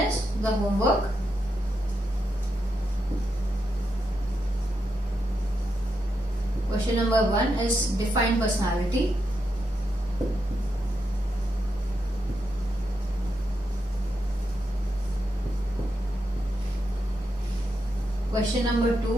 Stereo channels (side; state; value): both; normal; correlation 0.84